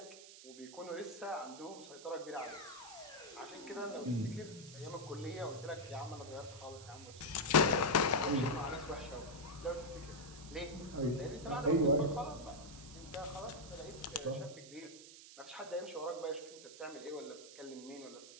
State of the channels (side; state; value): right; noise; hiss, 16 dB below the sound